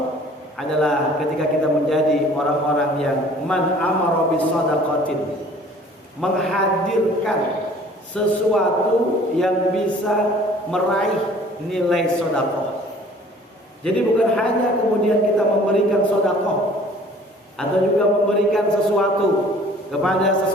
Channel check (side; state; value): both; normal; correlation 0.51